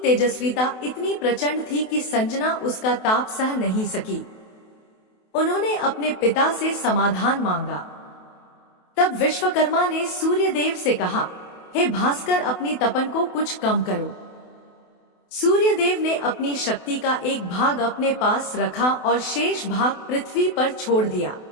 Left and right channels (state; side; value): late; right; 28 ms